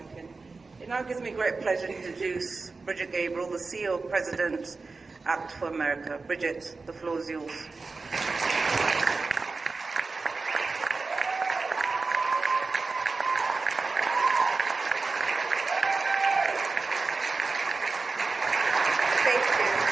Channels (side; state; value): left; quieter; 4.0 dB